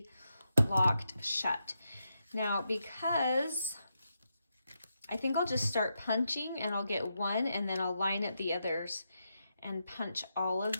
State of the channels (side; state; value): both; inverted; correlation -0.84